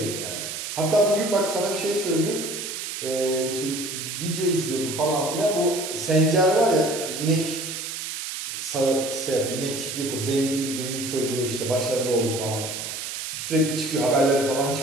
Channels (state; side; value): noise; right; hiss, 6 dB below the sound